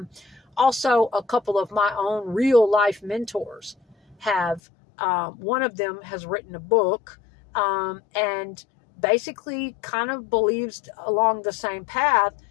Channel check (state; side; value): drops out; right; at 4.6 s